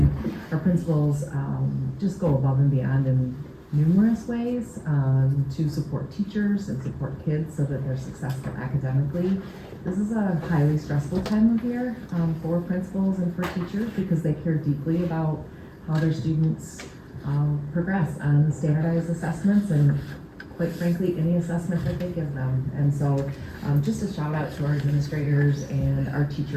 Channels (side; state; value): both; identical; correlation 1.00